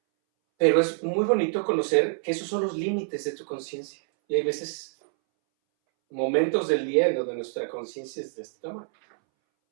Pero es muy bonito conocer que esos son los límites de tu conciencia. Y hay veces, momentos del día en donde nuestra conciencia es de este tamaño.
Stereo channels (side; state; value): left; silent; 61 dB below the other